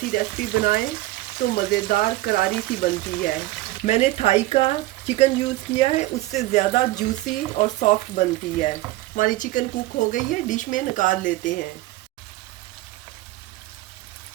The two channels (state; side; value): quieter; left; 17.9 dB